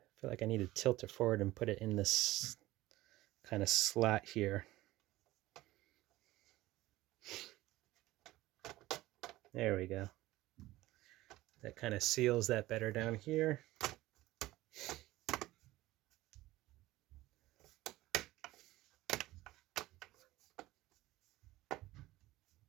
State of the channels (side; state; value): left; quieter; 17.3 dB